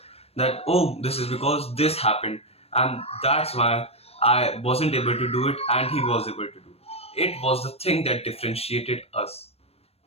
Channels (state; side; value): late; right; 0.29 ms